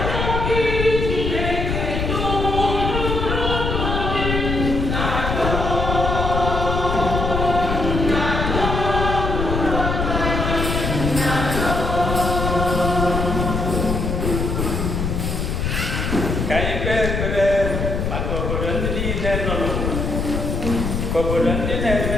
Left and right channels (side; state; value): left; noise; rumble, 1 dB below the sound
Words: Ka anyị kpee ekpere maka obodo ndị niile nọ n'ụwa, ka obodo ndị